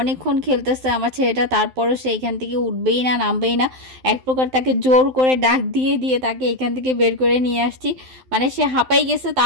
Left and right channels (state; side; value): late; left; 12 ms